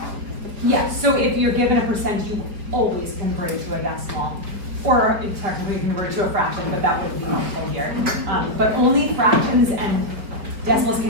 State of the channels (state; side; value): late; left; 4.7 ms